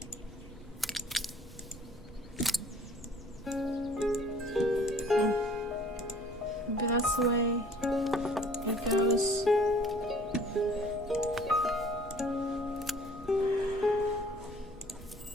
Maybe that's the way it goes.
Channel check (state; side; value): normal; both; correlation 0.53